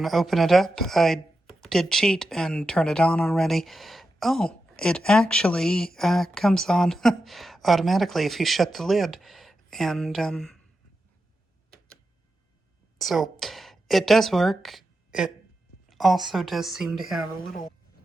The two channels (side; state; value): both; normal; correlation 0.89